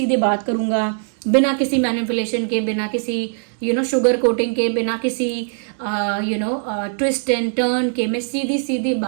बात करूँगा, बिना किसी मैनिपुलेशन के, बिना किसी शुगर कोटिंग के, बिना किसी ट्विस्ट एंड टर्न के, मैं सीधी सीधी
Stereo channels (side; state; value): left; silent; 65 dB below the other